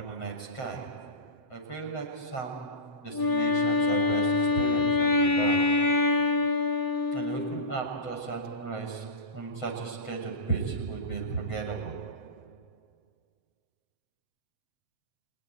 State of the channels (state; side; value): late; right; 7.8 ms